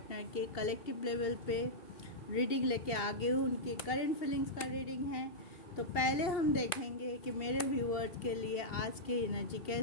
के कलेक्टिव लेवल पे रीडिंग लेके आ गए हूँ। उनके करंट फीलिंग्स का रीडिंग है। तो पहले हम देखेंगे कि मेरे व्यूअर्स के लिए आज की एनर्जी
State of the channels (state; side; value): late; right; 2.7 ms